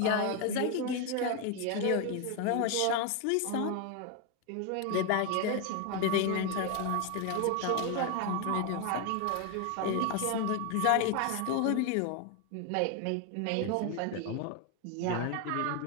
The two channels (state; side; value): different; both; correlation 0.01